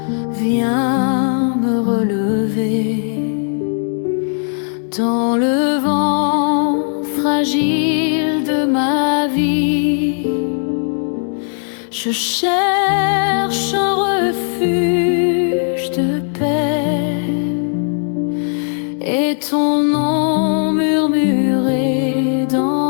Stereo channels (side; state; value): right; silent; 67 dB below the other